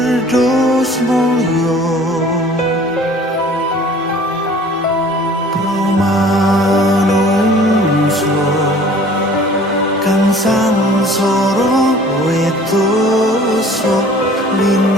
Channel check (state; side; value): normal; both; correlation 0.49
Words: mulya promanungso kang sangsara wedosa